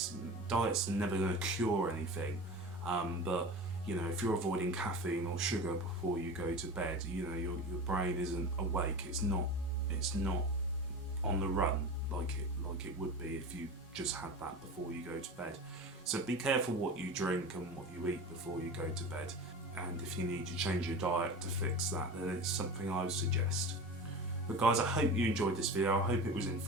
Diets are never going to cure anything, but you know, if you're avoiding caffeine or sugar before you go to bed, you know, your brain isn't awake. It's not on the run like it would be if you just had that before you go to bed. So be careful what you drink and what you eat before you go to bed. And if you need to change your diet to fix that, then it's something I would suggest. But guys, I hope you enjoyed this video. I hope it was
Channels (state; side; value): normal; both; correlation 0.31